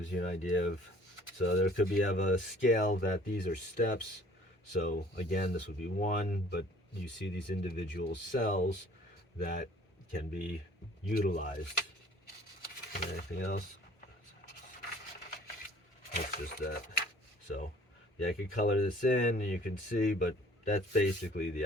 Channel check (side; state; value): both; normal; correlation 0.54